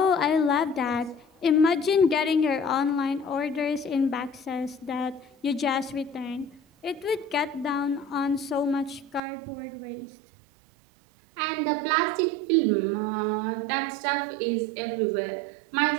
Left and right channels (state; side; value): drops out; left; at 9.2 s